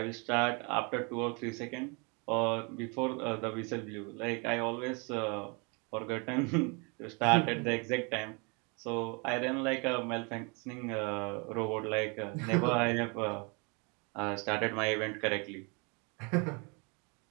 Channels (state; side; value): quieter; left; 32.1 dB